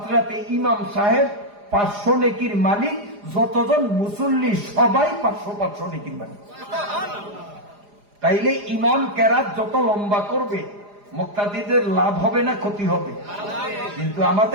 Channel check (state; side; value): late; left; 4.9 ms